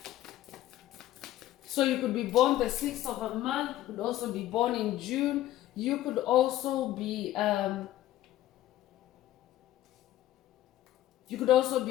So you could be born the 6th of a month. You could also be born in June. You could also be a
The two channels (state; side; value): quieter; right; 14.1 dB